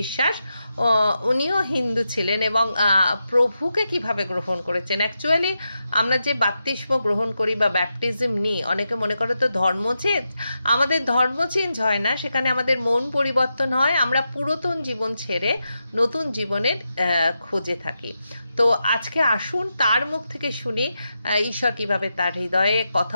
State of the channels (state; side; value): inverted; both; correlation -0.87